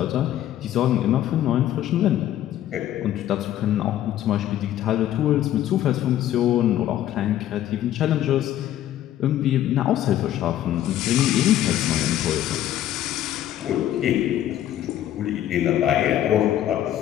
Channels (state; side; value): quieter; right; 12.2 dB